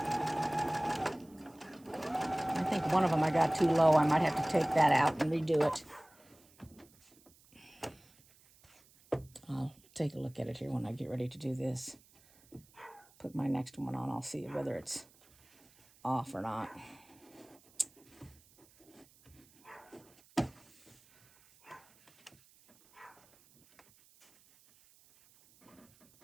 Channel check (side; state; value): right; noise; hiss, 28 dB below the sound